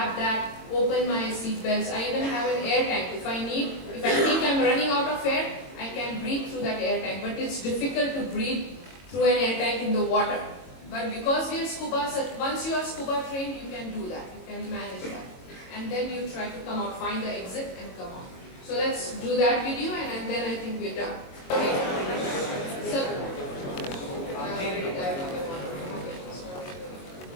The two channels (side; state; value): right; late; 22 ms